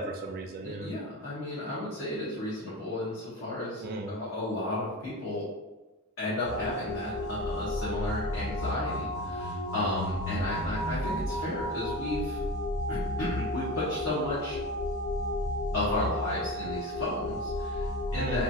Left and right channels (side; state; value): both; normal; correlation 0.27